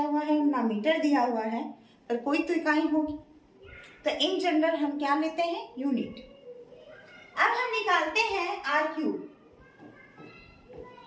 है ना मीटर दिया हुआ है, पर कोई तो इकाई होगी, तो इन जनरल हम क्या लेते हैं, यूनिट। अब हम निकालते हैं RQ।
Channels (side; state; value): both; identical; correlation 1.00